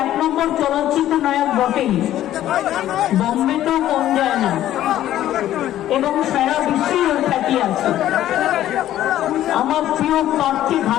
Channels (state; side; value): quieter; right; 12.8 dB